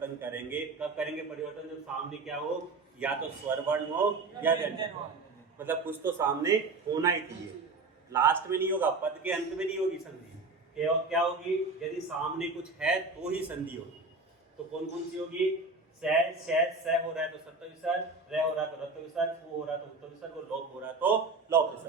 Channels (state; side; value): quieter; left; 3.7 dB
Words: करेंगे, कब करेंगे परिवर्तन, जब सामने क्या हो, या तो स्वर वर्ण हो या व्यंजन हो, मतलब कुछ तो सामने होना ही चाहिए, लास्ट में नहीं होगा, पद के अंत में नहीं होगी संधि। क्या होगी, यदि सामने कुछ है तो ही संधि होगी। तो कौन कौन सी होगी, से हो रहा है तो सत्व विसर्ग, रह हो रहा है तो रत्व विसर्ग, हो रहा है तो उत्व विसर्ग, और लोप हो रहा है तो लोप